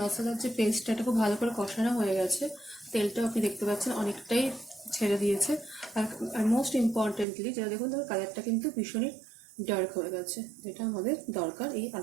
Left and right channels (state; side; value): drops out; left; at 7.2 s